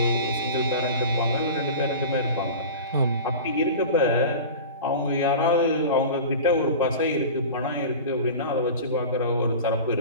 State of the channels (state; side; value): inverted; both; correlation -0.33